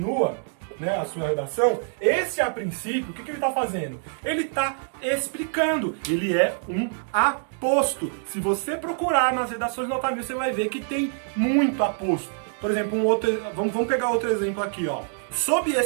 né, a sua redação, esse a princípio, o que ele está fazendo? Ele está explicando, ele é um aposto. Se você procurar nas redações nota 1000, você vai ver que tem muito aposto. Por exemplo, vamos pegar outro exemplo aqui, ó. Sob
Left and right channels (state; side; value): silent; left; 62 dB below the other